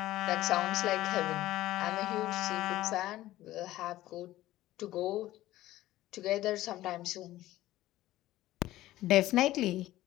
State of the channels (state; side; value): quieter; right; 15.5 dB